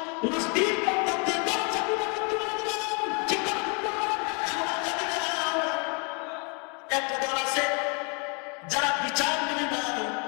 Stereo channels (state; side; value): quieter; right; 35.0 dB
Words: একটা দল আছে যারা বিচার মেনে না,